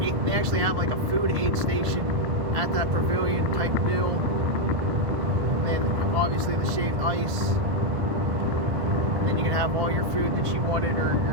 they actually have like a food aid station at that pavilion type deal. And then obviously the shaved ice. And then you can have all your food that you wanted, or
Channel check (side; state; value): left; late; 1.5 ms